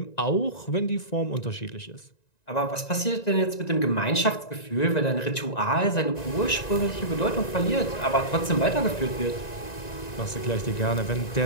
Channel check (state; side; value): late; right; 1.9 ms